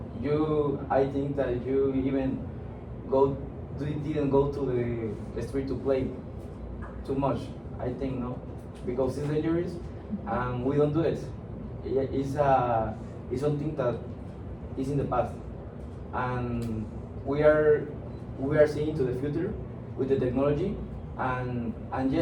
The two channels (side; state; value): both; identical; correlation 1.00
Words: I think that you even didn't go to the street to play too much. I think no, because it's dangerous, and we don't do it. It's something that is in the past, and we are seeing to the future with the technology, and